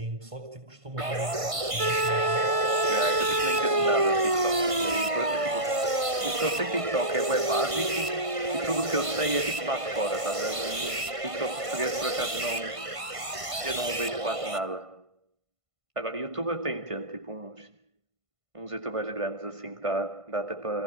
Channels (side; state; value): left; late; 1.5 ms